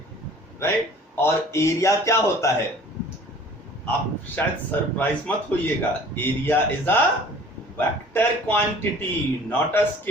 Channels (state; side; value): normal; both; correlation 0.49